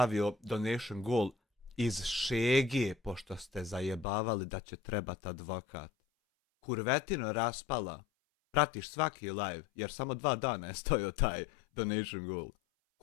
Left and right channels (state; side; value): drops out; right; at 4.0 s